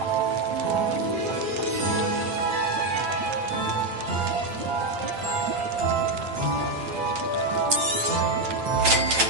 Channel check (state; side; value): late; left; 8.9 ms